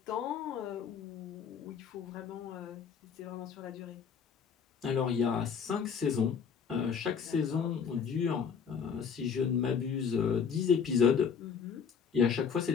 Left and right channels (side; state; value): right; quieter; 6.6 dB